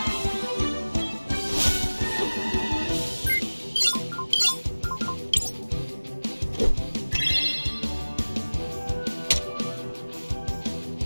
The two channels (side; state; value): both; inverted; correlation -1.00